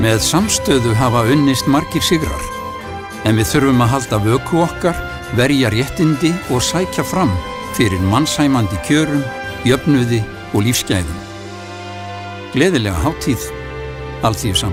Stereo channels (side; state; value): both; identical; correlation 1.00